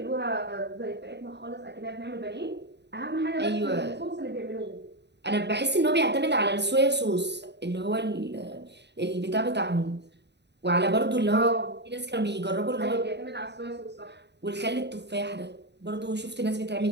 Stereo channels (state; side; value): late; left; 0.50 ms